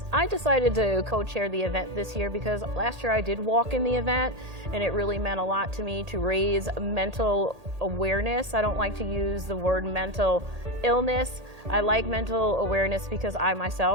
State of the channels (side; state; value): left; late; 1.8 ms